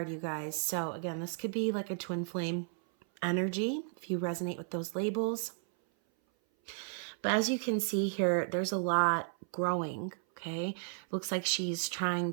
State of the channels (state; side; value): silent; left; 55 dB below the other